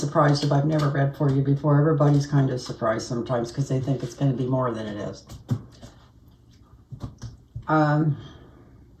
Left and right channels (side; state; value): both; identical; correlation 1.00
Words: if I've never read for you before. Everybody's kind of surprised sometimes because they think it's going to be more than it is.